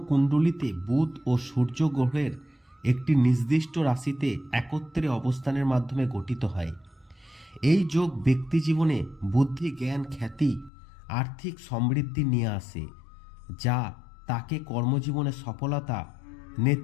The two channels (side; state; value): right; drops out; at 10.7 s